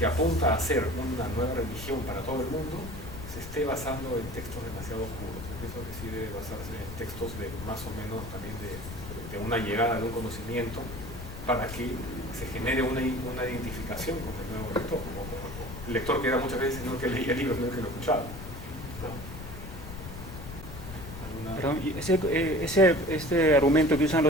apunta a ser una nueva religión para todo el mundo, se esté basando en textos demasiado oscuros. Yo pienso que sí debe basarse en textos de más o menos también de una llegada de un conocimiento para que se genere una identificación con el nuevo lector, como el lector que era muchas veces no el que leía libros, sino el que lo escuchaba. Perdón, y este argumento que usan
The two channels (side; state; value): left; noise; rumble, 11 dB below the sound